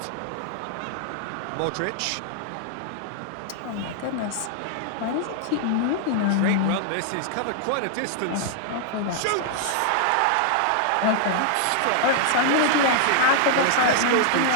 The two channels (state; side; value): different; both; correlation -0.01